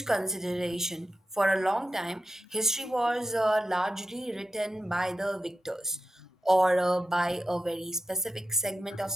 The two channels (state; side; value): normal; both; correlation 0.90